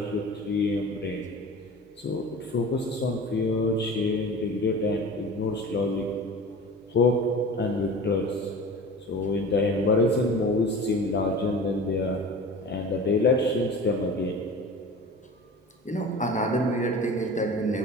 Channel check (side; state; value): both; normal; correlation 0.37